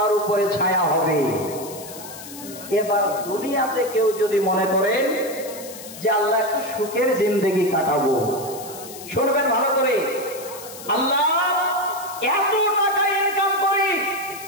উপরে ছায়া হবে। এবার দুনিয়াতে কেউ যদি মনে করেন যে আল্লাহ একটু সুখের জিন্দেগি কাটাবো, শুনবেন ভালো করে, আল্লাহ এত টাকা ইনকাম করি,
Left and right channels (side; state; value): left; noise; hiss, 14 dB below the sound